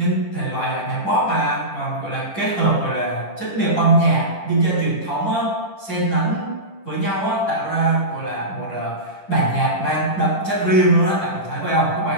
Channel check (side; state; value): right; late; 10 ms